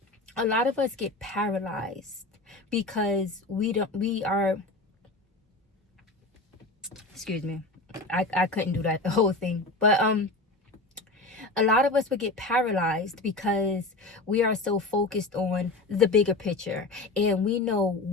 a lot of us get paralyzed because we are, excuse me, I couldn't do that the whole thing, but a lot of us would get paralyzed because we are so focused on the bigger picture, and we know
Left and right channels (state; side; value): quieter; right; 3.1 dB